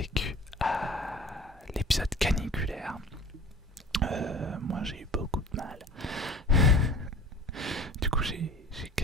à l'épisode caniculaire. Moi j'ai eu beaucoup de mal. Du coup j'ai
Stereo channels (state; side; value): normal; both; correlation 0.42